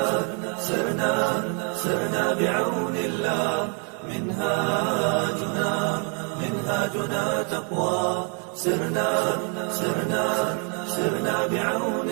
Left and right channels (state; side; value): quieter; left; 38.9 dB